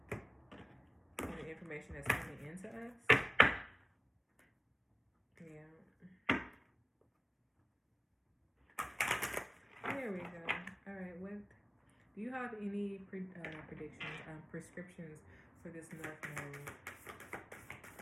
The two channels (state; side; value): identical; both; correlation 1.00